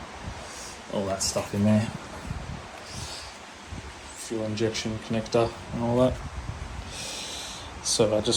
that stuff in there, fuel injection connector and all that. So I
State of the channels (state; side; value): identical; both; correlation 1.00